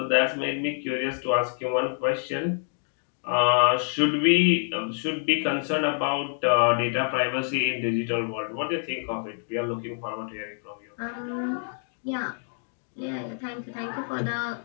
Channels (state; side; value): silent; right; 60 dB below the other